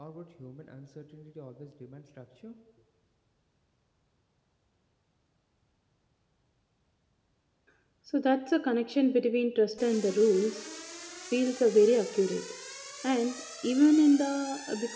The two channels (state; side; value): identical; both; correlation 1.00